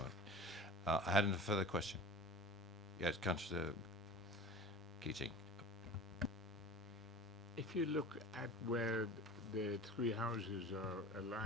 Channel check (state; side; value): normal; both; correlation 0.37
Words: I had a further question. Yes, Councillor Keating. If you look at where the 3 houses are